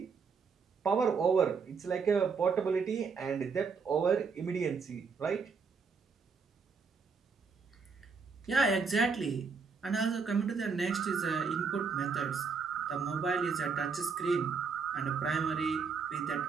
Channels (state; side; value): quieter; left; 5.3 dB